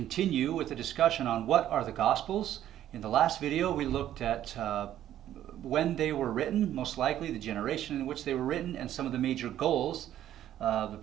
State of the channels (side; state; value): left; quieter; 11.8 dB